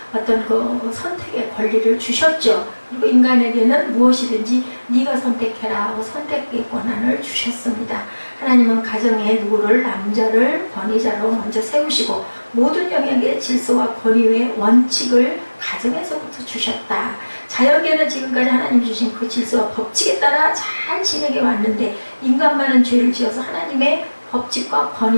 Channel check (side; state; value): both; inverted; correlation -1.00